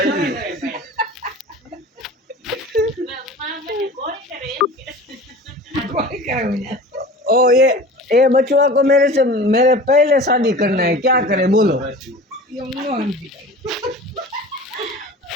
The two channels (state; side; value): normal; both; correlation 0.39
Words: कोई करे मुझे ओ ये बचुआ को मेरे पहले शादी करना है, क्या करे बोलो।